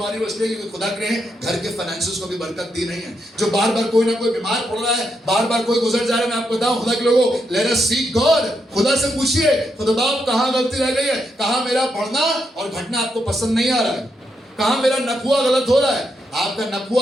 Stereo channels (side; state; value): both; normal; correlation 0.81